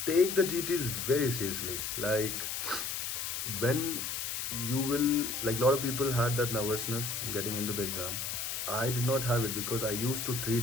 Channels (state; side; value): noise; left; hiss, 3 dB below the sound